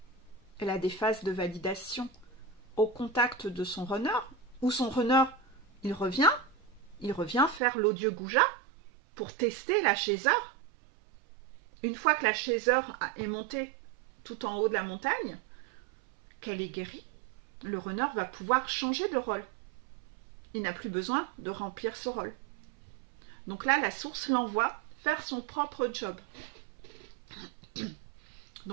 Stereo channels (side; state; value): left; drops out; at 7.6 s